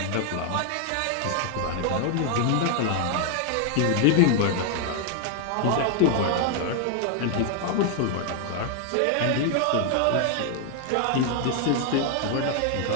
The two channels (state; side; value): different; both; correlation 0.00